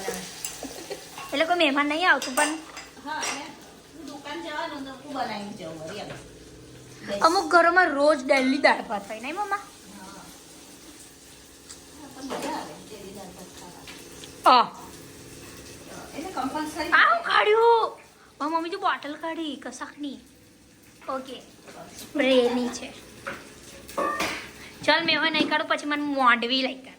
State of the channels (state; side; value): identical; both; correlation 1.00